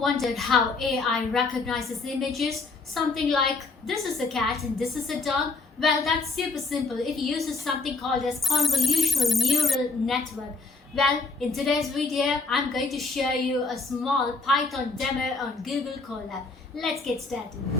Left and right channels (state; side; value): quieter; right; 4.0 dB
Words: how AI recognizes images? Something like this is a cat and this is a dog? Well, that's super simple. It uses something called as convolutional neural network. Well, in today's video, I'm going to show you a small Python demo on Google Colab. Let's get started.